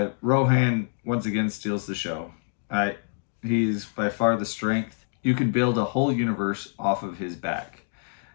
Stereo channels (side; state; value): right; silent; digital silence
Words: Rohan once again steals the show. He's by far the strength. You can build a whole universe off of his back.